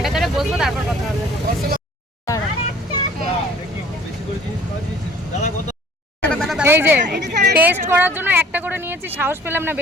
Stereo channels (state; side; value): normal; both; correlation 0.52